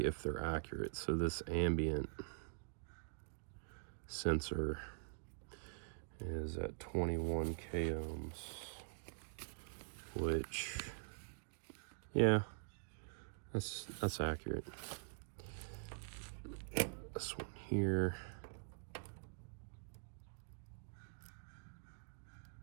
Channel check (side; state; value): left; silent; digital silence